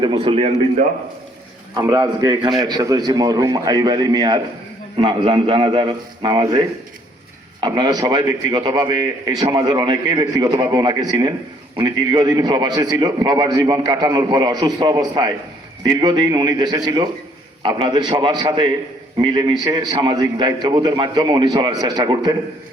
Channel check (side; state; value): both; normal; correlation 0.64